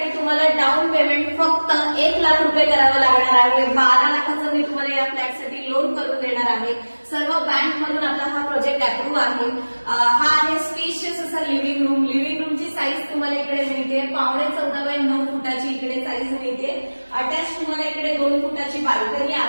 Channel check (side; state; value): both; inverted; correlation -1.00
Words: तुम्हाला डाऊन पेमेंट फक्त 1 लाख रुपये करावं लागणार आहे. 12 लाखाचं मी तुम्हाला या फ्लॅटसाठी लोन करून देणार आहे. सर्व बँक मधून आपला हा प्रोजेक्ट अप्रूव्ह आहे. हा आहे स्पेशियस असा लिव्हिंग रूम. लिव्हिंग रूमची साईज तुम्हाला इकडे मिळते 14.5 x 9 फुटाची इकडे साईज मिळते. अटॅच तुम्हाला इकडे 2 फुटाची बाल्कनी